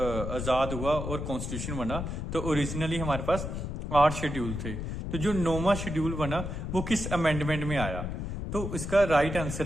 हुआ और कॉन्स्टिट्यूशन बना, तो ओरिजिनली हमारे पास 8 शेड्यूल थे। तो जो 9वां शेड्यूल बना वो किस अमेंडमेंट में आया? तो इसका राइट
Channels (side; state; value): left; noise; rumble, 4 dB below the sound